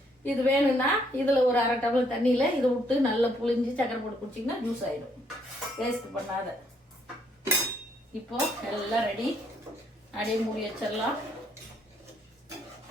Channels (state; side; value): normal; both; correlation 0.70